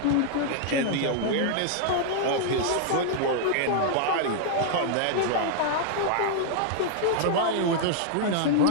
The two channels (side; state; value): both; different; correlation -0.01